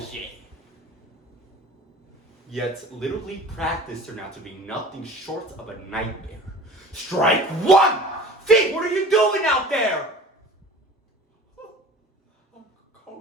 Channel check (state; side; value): normal; both; correlation 0.42